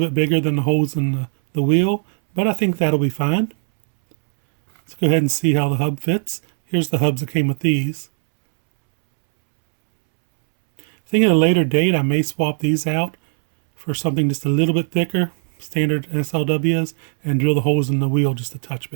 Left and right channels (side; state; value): left; silent; 66 dB below the other